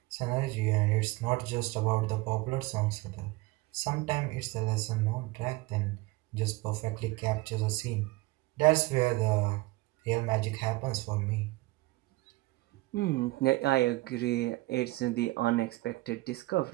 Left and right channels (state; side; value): quieter; left; 21.0 dB